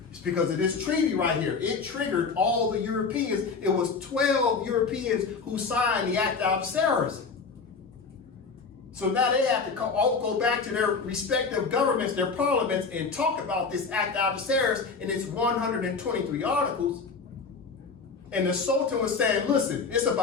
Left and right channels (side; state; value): right; quieter; 4.9 dB